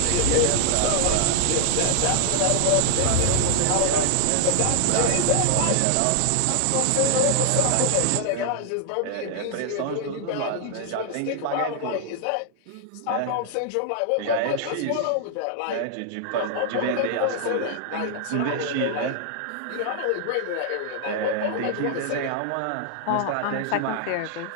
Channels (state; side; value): different; both; correlation 0.00